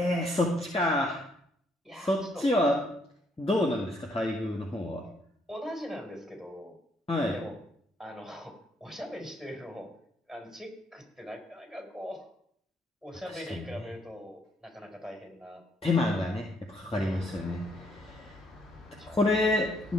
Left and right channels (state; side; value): normal; both; correlation 0.70